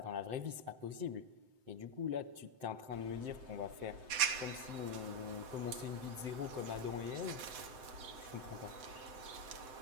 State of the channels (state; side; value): late; left; 7.8 ms